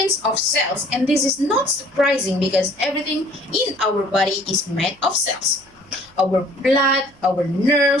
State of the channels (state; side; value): noise; right; hum, 29 dB below the sound